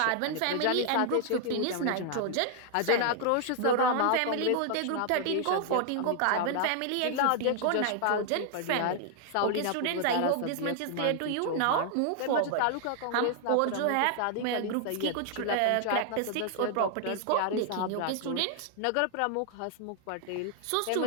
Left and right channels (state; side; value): different; both; correlation 0.00